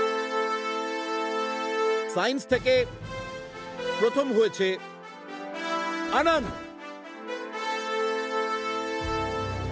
সায়েন্স থেকে প্রথম হয়েছে আনন্দ।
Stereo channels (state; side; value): identical; both; correlation 1.00